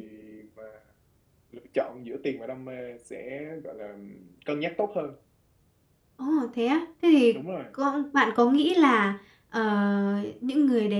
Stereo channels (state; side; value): identical; both; correlation 1.00